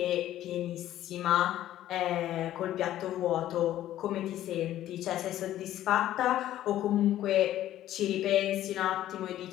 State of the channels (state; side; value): quieter; right; 13.0 dB